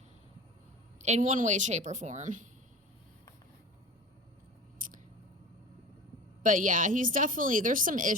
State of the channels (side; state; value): both; normal; correlation 0.34